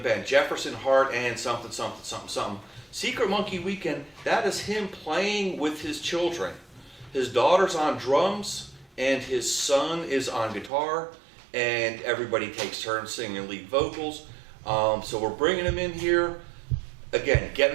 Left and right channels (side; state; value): left; drops out; at 10.7 s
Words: band, Jefferson Hart and something. Secret Monkey Weekend, that is him playing with his children. His daughter's on drums and his son is on guitar, and everybody takes turns singing lead vocals. So we're bringing him in here. Again,